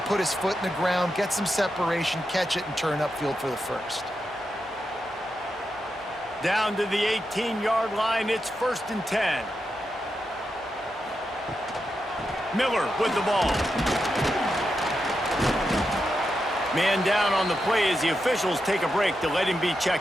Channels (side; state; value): both; normal; correlation 0.87